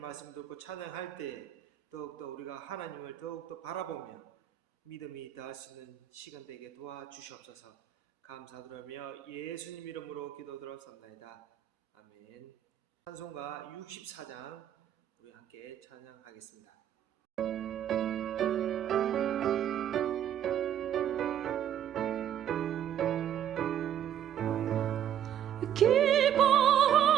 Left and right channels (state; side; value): quieter; left; 10.4 dB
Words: 듣고 찬양할 때 더욱더 우리가 하나님을 더욱더 바라보며 믿음이 더할 수 있는 시간 되게 도와주시옵소서. 감사드리며 예수님 이름으로 기도드렸습니다. 아멘. 찬송가 64장 우리 함께 찬양하겠습니다.